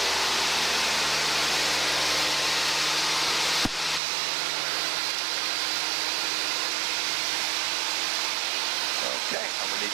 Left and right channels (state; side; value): drops out; left; at 4.0 s